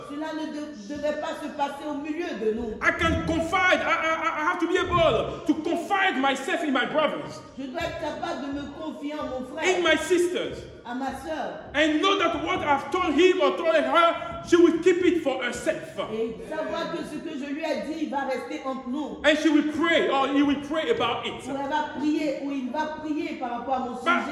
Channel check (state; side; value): identical; both; correlation 1.00